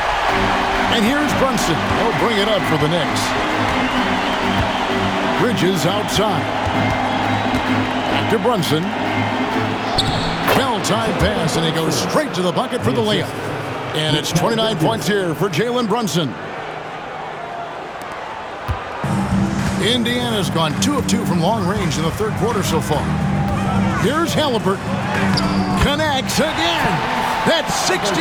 And here's Brunson. He'll bring it up for the Knicks. Bridges outside. Back to Brunson. Well-timed pass, and he goes straight to the bucket for the layup. And it's 29 points here for Jalen Brunson. Indiana's gone 2 of 2 from long range in the third quarter so far. Here's Halliburton. Connects again. That's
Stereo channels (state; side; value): identical; both; correlation 1.00